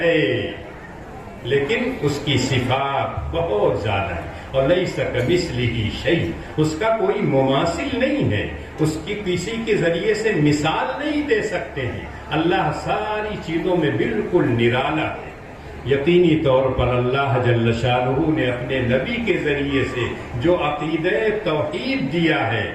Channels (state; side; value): identical; both; correlation 1.00